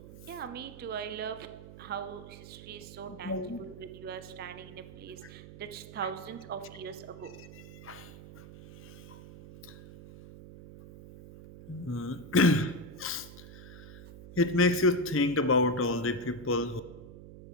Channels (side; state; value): right; noise; hum, 15 dB below the sound